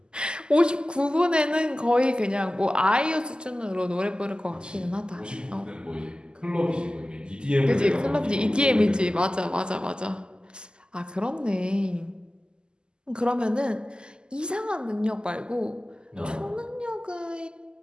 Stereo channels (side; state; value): left; late; 0.047 ms